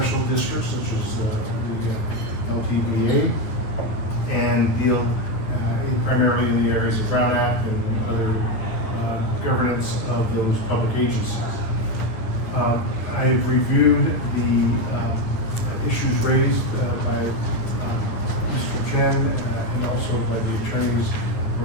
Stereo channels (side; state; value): right; late; 9.7 ms